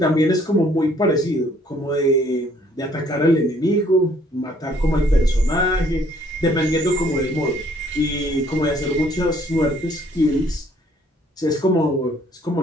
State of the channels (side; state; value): both; normal; correlation 0.62